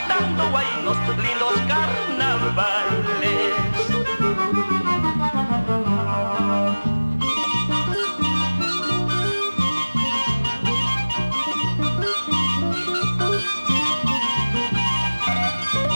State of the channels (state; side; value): inverted; both; correlation -1.00